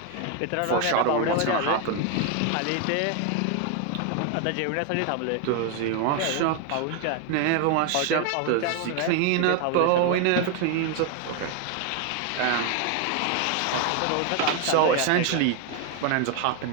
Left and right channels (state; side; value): different; both; correlation 0.01